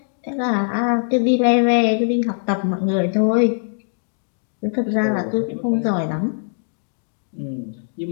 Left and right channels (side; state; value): right; silent; digital silence